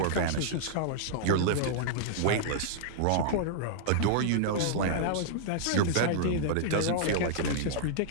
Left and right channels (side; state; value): both; different; correlation -0.01